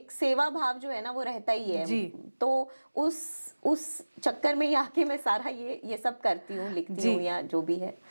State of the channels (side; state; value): both; inverted; correlation -1.00